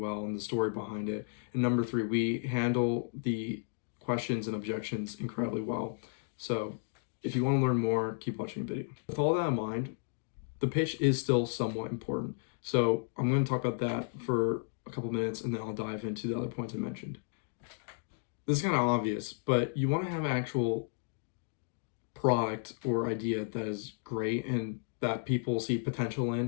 and the story behind it. And number three, we handle the questions and objections incredibly well. So if you want to learn more, keep watching the video. With all that in mind, the pitch is still somewhat important. So I'm going to talk about that for a couple minutes and then I'll dive into the other points I mentioned. This is kind of obvious, but you want to have actual product or idea that is great and that people see potential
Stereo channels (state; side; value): silent; right; digital silence